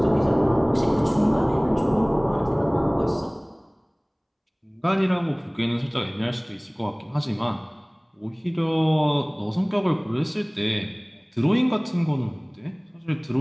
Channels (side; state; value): both; identical; correlation 1.00